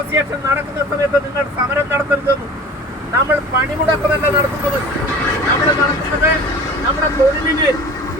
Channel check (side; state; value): both; normal; correlation 0.41